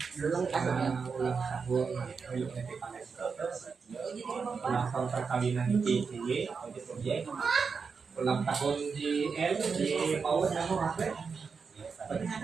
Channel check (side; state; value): left; quieter; 5.4 dB